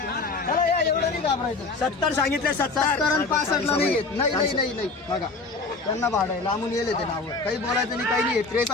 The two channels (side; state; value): right; quieter; 3.8 dB